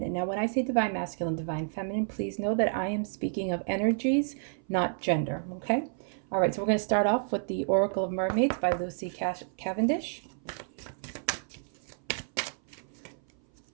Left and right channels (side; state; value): left; silent; 56 dB below the other